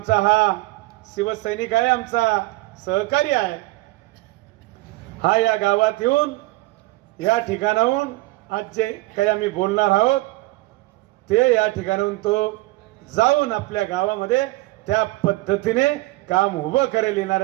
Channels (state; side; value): quieter; left; 20.3 dB